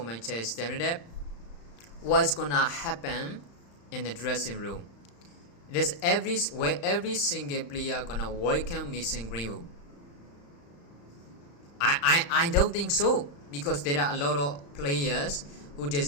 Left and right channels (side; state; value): right; late; 35 ms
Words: Manchester United, what's gonna happen in the dressing room? There's every single player gonna welcome Mason Greenwood. I don't think so, because there are a lot of players who